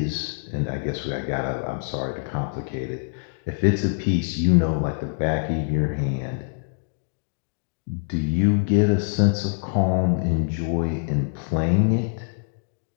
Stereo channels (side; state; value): right; silent; digital silence